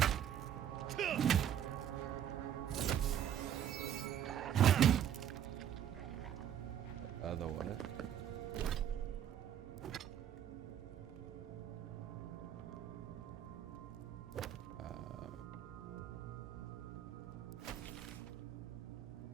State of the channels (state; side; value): quieter; left; 9.9 dB